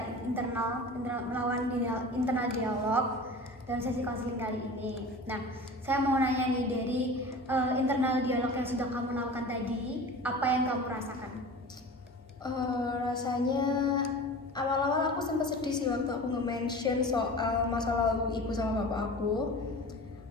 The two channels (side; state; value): both; normal; correlation 0.36